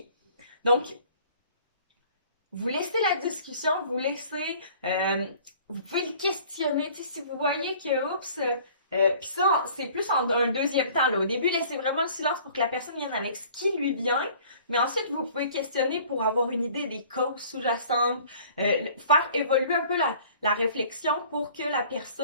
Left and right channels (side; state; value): both; inverted; correlation -0.51